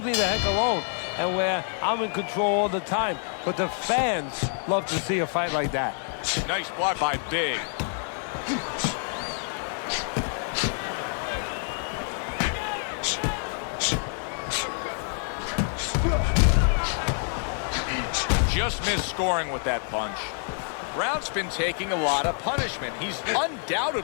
me the heck alone. And where I'm in control all the time. But the fans love to see a fight like that. Nice block by Big. Just missed scoring with that punch. Brown's been taking a lot of punishment. He's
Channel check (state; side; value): silent; right; 55 dB below the other